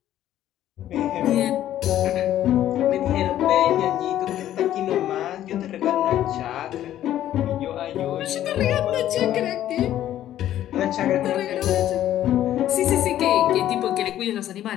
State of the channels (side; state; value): right; quieter; 12.3 dB